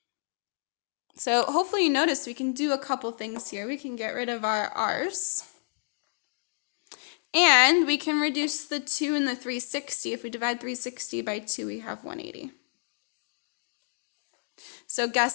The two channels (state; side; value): silent; right; digital silence